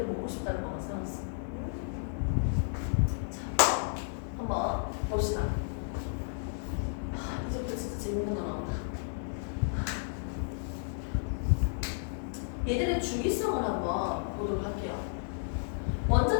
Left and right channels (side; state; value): right; silent; digital silence